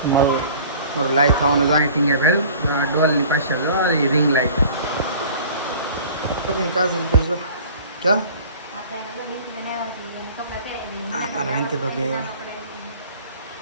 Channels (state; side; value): inverted; both; correlation -0.46